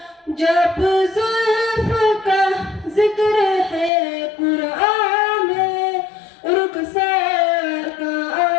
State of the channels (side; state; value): right; drops out; at 3.9 s